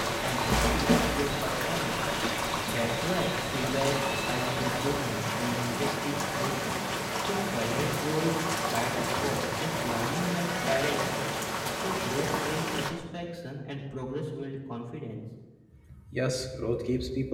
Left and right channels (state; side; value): identical; both; correlation 1.00